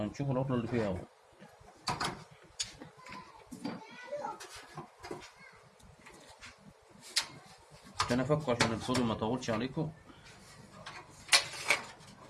العطلة اللي فيها أول. عشان أفكه عشان الفيديو ما يطولش عليكم.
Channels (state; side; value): identical; both; correlation 1.00